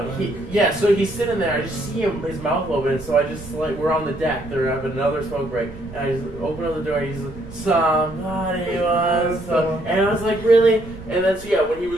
he's sitting there. I just see him, his mouth open. So I just like we're on the deck. They're having another smoke break, and I just open up the door. And he's like, somebody wants some, and I was like, really? And then when he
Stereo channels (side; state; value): right; noise; rumble, 19 dB below the sound